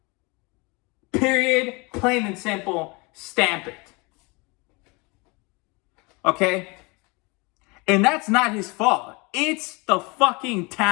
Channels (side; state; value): right; quieter; 27.6 dB